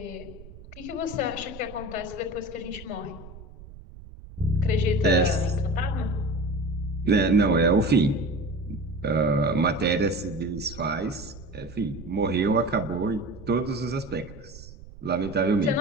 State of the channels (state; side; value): noise; right; rumble, 17 dB below the sound